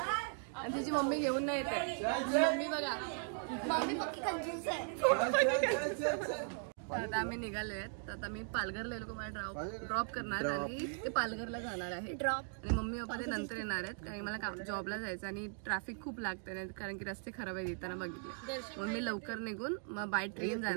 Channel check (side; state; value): left; silent; 52 dB below the other